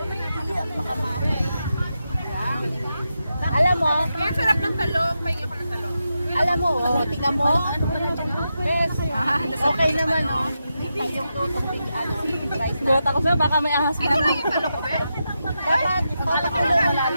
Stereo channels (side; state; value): both; inverted; correlation -0.87